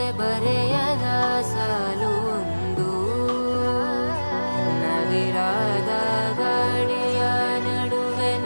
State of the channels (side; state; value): both; inverted; correlation -1.00